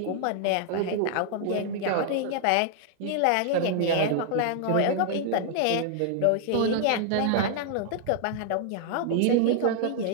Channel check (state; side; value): different; both; correlation -0.01